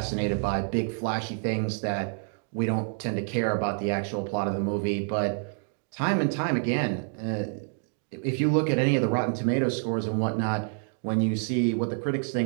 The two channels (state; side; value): silent; left; 59 dB below the other